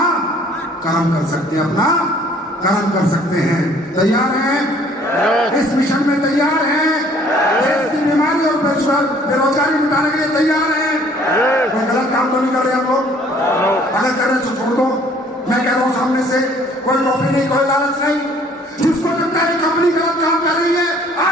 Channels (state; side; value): normal; both; correlation 0.57